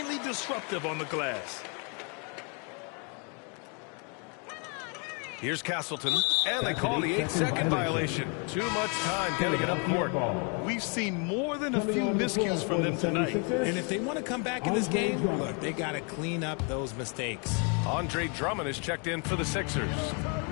disruptive on the glass. Here's Castleton, and they call the 8-second violation. Too much time getting it up court. We've seen more than a few miscues from them tonight. And if they want to come back in this game, look, they got to clean up those mistakes. Andre Drummond is checked in for the Sixers.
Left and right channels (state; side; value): quieter; right; 36.2 dB